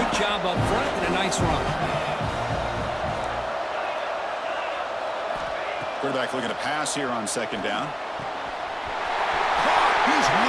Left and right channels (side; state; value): both; identical; correlation 1.00